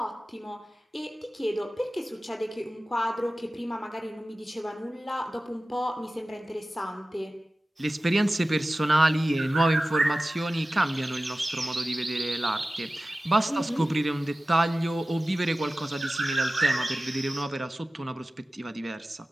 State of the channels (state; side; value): normal; both; correlation 0.96